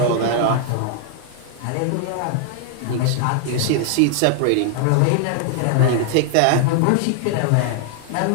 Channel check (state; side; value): different; both; correlation 0.00